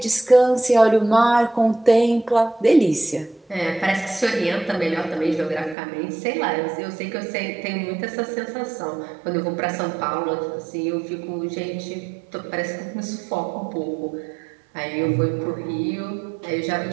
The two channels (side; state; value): left; drops out; at 5.8 s